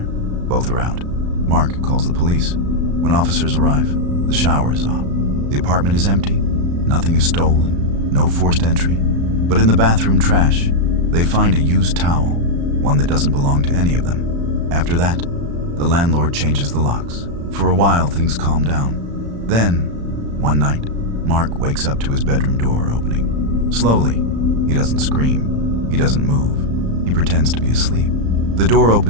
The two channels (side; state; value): left; late; 35 ms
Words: are out. Mark calls the police. When officers arrive, the shower is off. The apartment is empty. Nothing is stolen. No forced entry. But in the bathroom trash, they find a used towel, one that doesn't belong to any of them. After that, the landlord changes the locks. For a while, things calm down. Then, one night, Mark wakes up to his bedroom door opening. Slowly, he doesn't scream. He doesn't move. He pretends to be asleep. The door